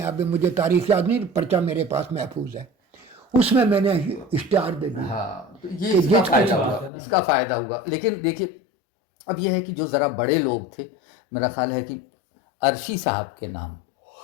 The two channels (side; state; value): right; drops out; at 6.9 s